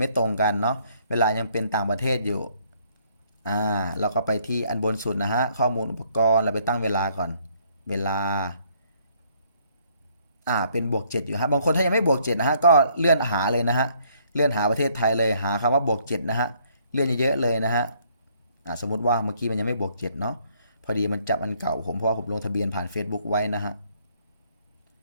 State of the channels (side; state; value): both; inverted; correlation -0.66